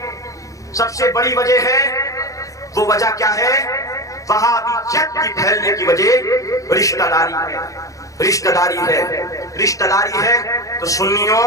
سب سے بڑی وجہ ہے, وہ وجہ کیا ہے؟ وہابیت کی پھیلنے کی وجہ رشتہ داری ہے. رشتہ داری ہے, رشتہ داری ہے. تو سنیوں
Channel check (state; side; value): late; right; 0.16 ms